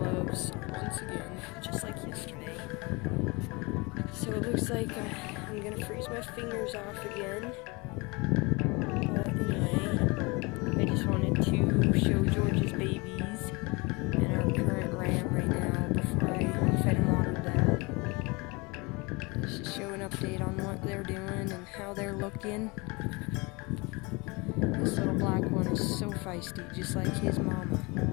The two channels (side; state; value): right; quieter; 26.7 dB